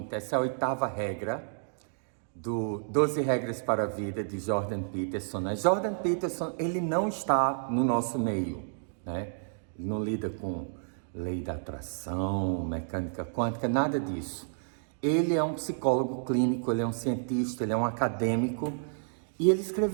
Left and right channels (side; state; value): left; silent; digital silence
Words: Essa é a 8ª regra do 12 Regras para a Vida de Jordan Peterson. Jordan Peterson, ele não está no nosso meio, né? Ele não lida com lei da atração, mecânica quântica, nada disso. Ele é um psicólogo clínico, ele é um cientista, ele é um acadêmico e ele